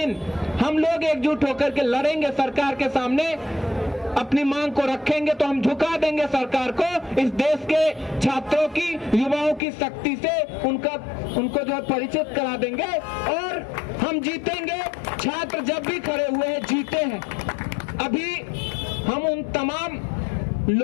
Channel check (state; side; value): drops out; right; at 9.6 s